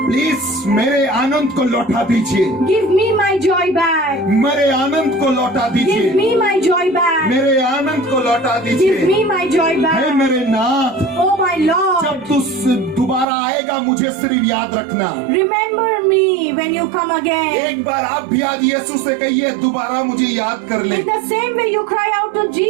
Please मेरे आनंद को लौटा दीजिए, Give me my joy back. मेरे आनंद को लौटा Give दीजिए, me my joy back. मेरे आनंद को लौटा Give दीजिए। me my joy hey back. मेरे नाथ, Oh my Lord, जब तू दोबारा आएगा मुझे सिर्फ याद रखना, remember me when you come again. एक बार आप भी आज यीशु से कहिए दोबारा मुझे याद कर ले। In the same way you cry out to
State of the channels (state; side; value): drops out; left; at 13.2 s